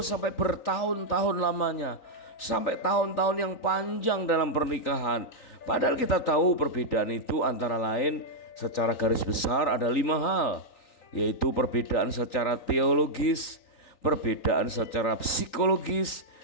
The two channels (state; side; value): late; right; 3.9 ms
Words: bertahun-tahun lamanya, sampai tahun-tahun yang panjang dalam pernikahan. Padahal kita tahu perbedaan itu antara lain secara garis besar ada 5 hal, yaitu perbedaan secara teologis, perbedaan secara psikologis,